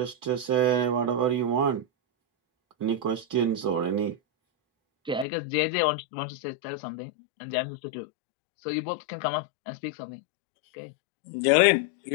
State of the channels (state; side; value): drops out; right; at 5.2 s